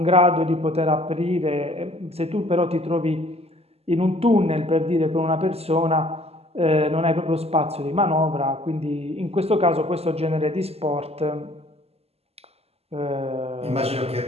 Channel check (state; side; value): late; left; 0.29 ms